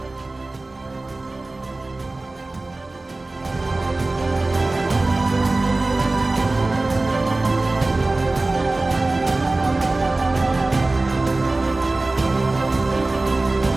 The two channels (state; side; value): quieter; left; 3.0 dB